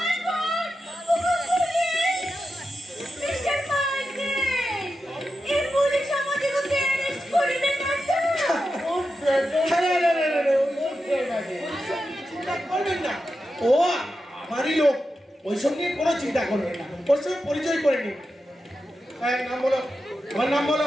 God! Mr. Michael! এই পুলিশ আমাদেরকে অ্যারেস্ট করে দেন না। চিন্তা করবেন না, ও আমারই লোক, ওই সঙ্গে কোনো চিন্তা করবেন না। ওর সঙ্গে পরিচয় করে নিন। নাম বলো, তোমার নাম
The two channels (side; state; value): both; normal; correlation 0.89